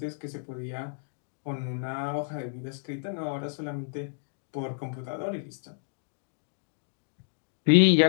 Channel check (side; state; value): right; silent; digital silence